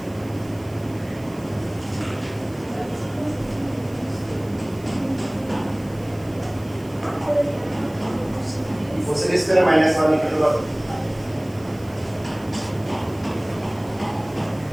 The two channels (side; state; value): right; noise; hiss, 24 dB below the sound